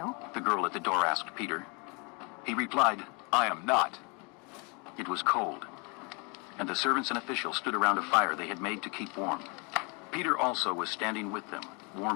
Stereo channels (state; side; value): quieter; right; 31.9 dB